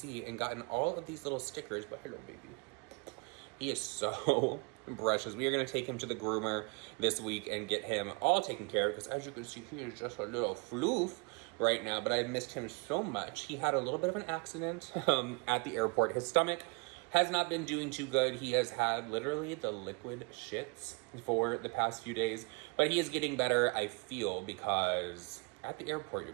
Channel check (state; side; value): quieter; left; 30.9 dB